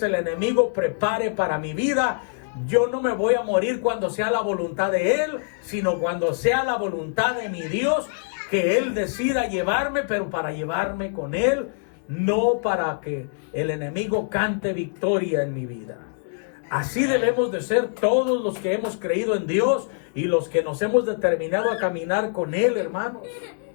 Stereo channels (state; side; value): silent; right; digital silence